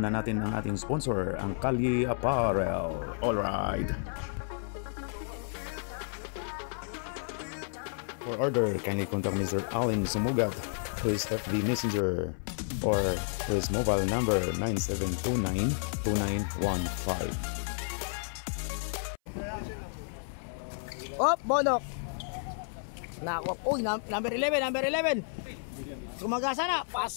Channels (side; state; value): right; silent; 57 dB below the other